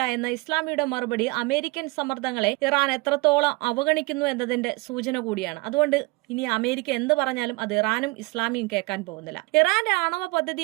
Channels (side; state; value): left; quieter; 24.7 dB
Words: എന്ന ഇസ്ലാമിയുടെ മറുപടി അമേരിക്കൻ സമ്മർദ്ദങ്ങളെ ഇറാൻ എത്രത്തോളം അവഗണിക്കുന്നു എന്നതിന്റെ സൂചന കൂടിയാണ്. അതുകൊണ്ട് ഇനി അമേരിക്ക എന്ത് പറഞ്ഞാലും അത് ഇറാനും ഇസ്ലാമിയും കേൾക്കാൻ പോകുന്നില്ല. ഇറാന്റെ ആണവ പദ്ധതി